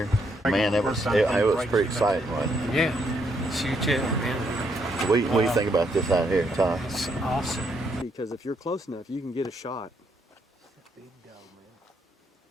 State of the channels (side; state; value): both; normal; correlation 0.75